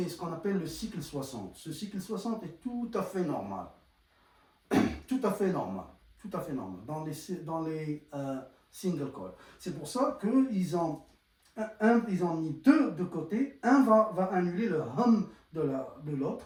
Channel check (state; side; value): identical; both; correlation 1.00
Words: ce qu'on appelle le cycle 60. Ce cycle 60 est tout à fait normal. Tout à fait normal dans les single coil. C'est pour ça qu'ils ont mis deux de côté. Un va annuler le hum de